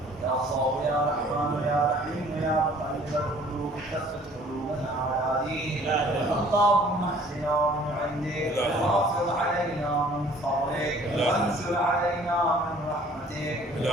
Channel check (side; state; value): both; normal; correlation 0.54